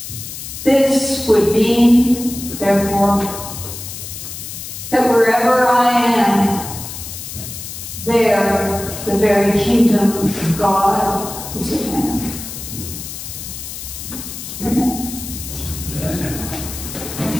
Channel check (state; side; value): noise; left; hiss, 9 dB below the sound